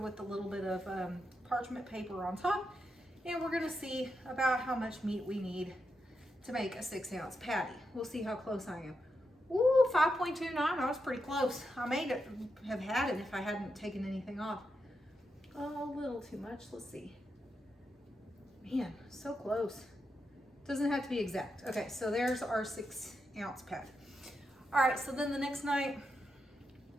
with a little bit of parchment paper on top. And we're gonna see about how much meat we need to make a 6-ounce patty. We'll see how close I am. Ooh, 5.29, I was pretty close. I may have had it if I hadn't taken anything off. Oh, a little too much, let's see. Man, so close. Doesn't have to be exact. Okay, so there's our 6-ounce patty. All right, so then the next night,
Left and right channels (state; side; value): normal; both; correlation 0.85